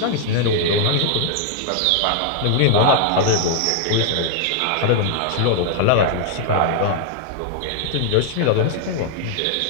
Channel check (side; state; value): both; different; correlation 0.00